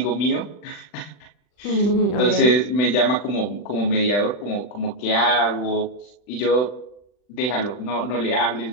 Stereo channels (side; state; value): right; late; 40 ms